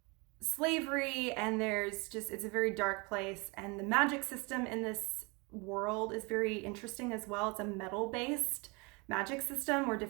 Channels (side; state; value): left; quieter; 28.9 dB